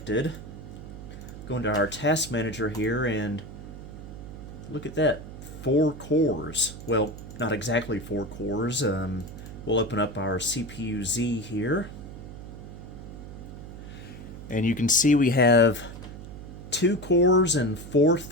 Go into our task manager here and look at that, 4 cores. Well, not exactly 4 cores. We'll open up our CPU-Z here, and you can see we have 2 cores and 4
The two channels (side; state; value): right; noise; hum, 12 dB below the sound